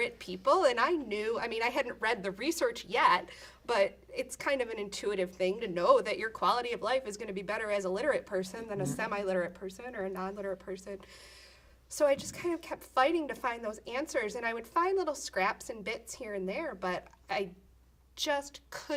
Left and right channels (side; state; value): both; identical; correlation 1.00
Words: people. And I knew, I mean, I hadn't read the research yet, but it's kind of an intuitive thing to know that your quality of life is going to be better as a literate person than a semi-literate person or a non-literate person. So I just kind of kept fighting to find those answers, and I would find little scraps and bits here and there, but I just